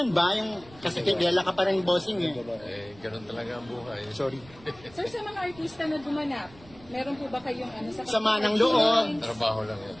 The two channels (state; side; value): noise; right; rumble, 23 dB below the sound